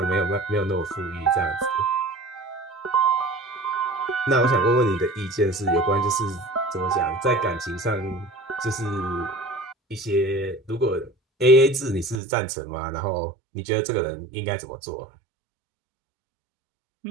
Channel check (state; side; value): drops out; left; at 12.2 s